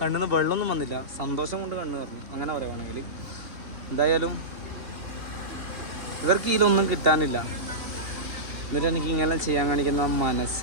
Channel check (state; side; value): late; left; 2.9 ms